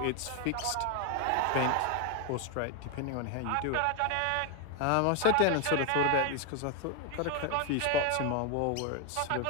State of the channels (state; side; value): different; both; correlation 0.01